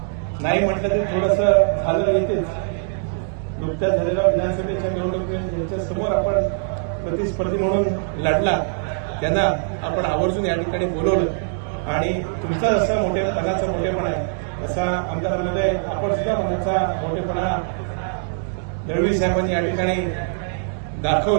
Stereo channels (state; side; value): silent; left; digital silence